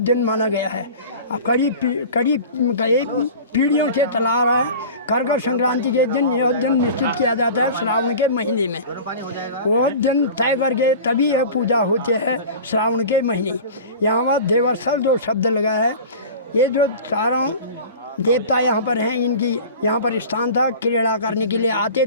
माना गया है। अब कई पीढ़ियों से चला आ रहा है। कर्कट संक्रांति के दिन यह दिन निश्चित किया जाता है श्रावण के महीने में। वह दिन तय करके तभी यह पूजा होती है श्रावण के महीने। यहाँ पर देवस्थल जो शब्द लगा है, ये जो चारों देवता यहाँ पर हैं, इनकी यहाँ पर स्थान था। क्रीड़ा करने के लिए आते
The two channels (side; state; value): both; inverted; correlation -0.37